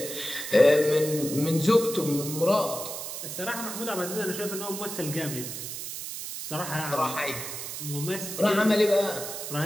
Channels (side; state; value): right; noise; hiss, 7 dB below the sound